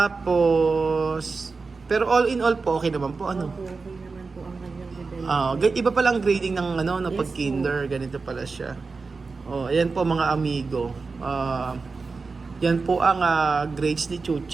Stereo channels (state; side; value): quieter; left; 4.3 dB